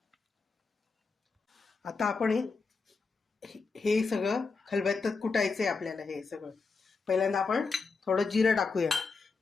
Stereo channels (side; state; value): right; quieter; 4.5 dB